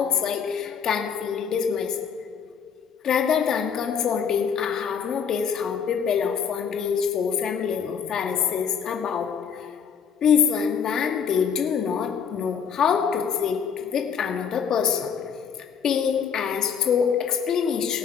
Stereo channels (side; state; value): right; quieter; 7.1 dB